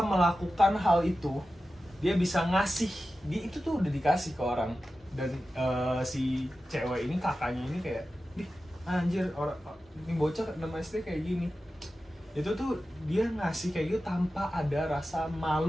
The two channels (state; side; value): normal; both; correlation 0.93